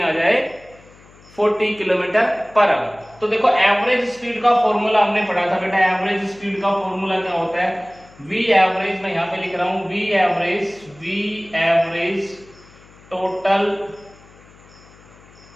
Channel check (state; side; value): noise; left; hum, 25 dB below the sound